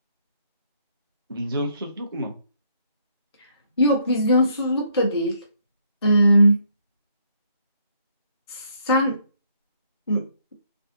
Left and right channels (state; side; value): inverted; both; correlation -0.70